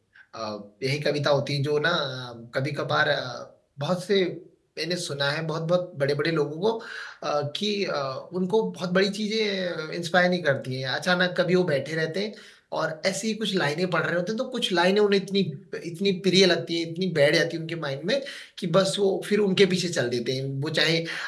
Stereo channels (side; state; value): both; identical; correlation 1.00